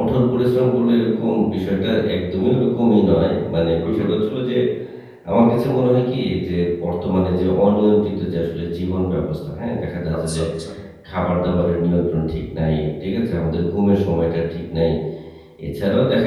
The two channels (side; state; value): both; identical; correlation 1.00